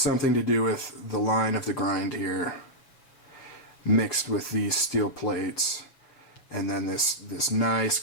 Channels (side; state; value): right; late; 6.7 ms